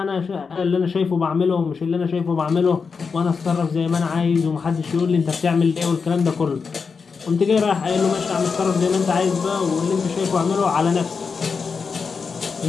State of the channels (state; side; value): quieter; right; 5.3 dB